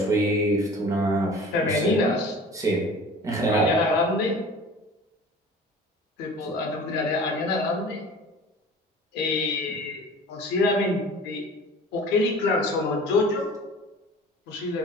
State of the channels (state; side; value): normal; both; correlation 0.42